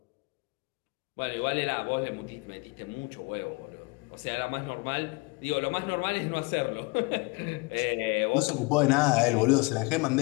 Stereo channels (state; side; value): quieter; right; 27.6 dB